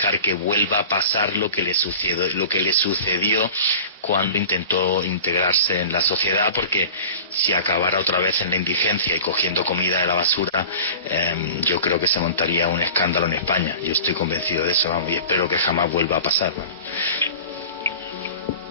que vuelva a pasar lo que le sucedió cuando intentó integrarse en la sociedad, porque si acabara otra vez en la indigencia y cogiendo comida de la basura, yo creo que se montaría un escándalo en España. Yo estoy convencido de eso, vamos, y espero que jamás vuelva a pasar, vamos.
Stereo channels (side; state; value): both; inverted; correlation -0.39